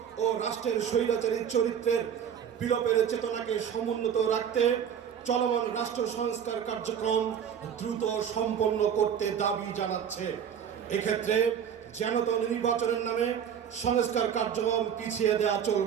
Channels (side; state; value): left; quieter; 8.4 dB